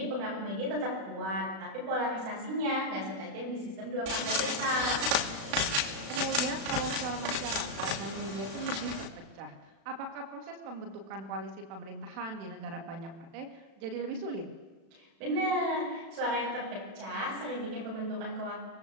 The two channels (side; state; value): left; late; 36 ms